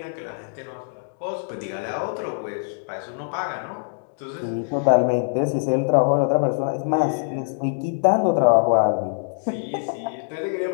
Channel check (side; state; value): right; silent; digital silence